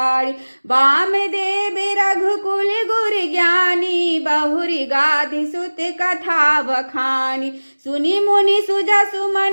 वामदेव रघुकुल गुर ज्ञानी, बहुरी गाधि सुत कथा बखानी। सुनि मुनि सुजसु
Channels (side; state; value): both; inverted; correlation -1.00